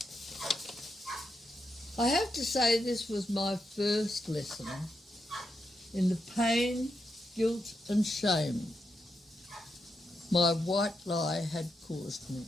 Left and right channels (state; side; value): normal; both; correlation 0.84